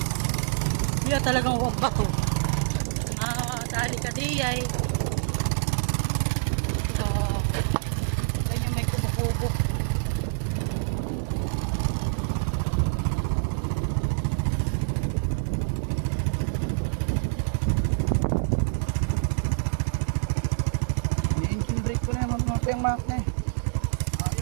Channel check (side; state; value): left; silent; digital silence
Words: Wala talagang hukak. Dahil kadiyay. Medyo may kukukuko. yung map na eh.